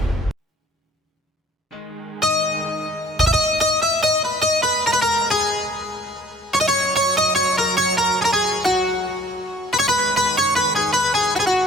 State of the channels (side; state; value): both; normal; correlation 0.55